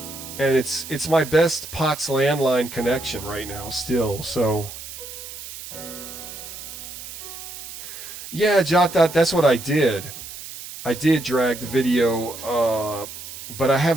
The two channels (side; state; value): right; noise; hiss, 12 dB below the sound